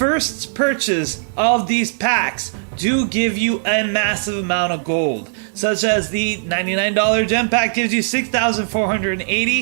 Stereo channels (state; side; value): silent; left; 67 dB below the other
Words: purchase of these packs do give you a massive amount of gold, such as the $99 gem pack gives you